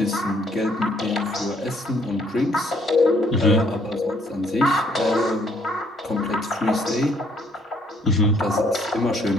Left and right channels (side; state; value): both; normal; correlation 0.65